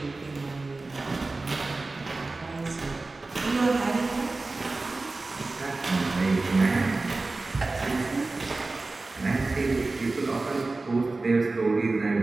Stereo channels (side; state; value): left; quieter; 3.4 dB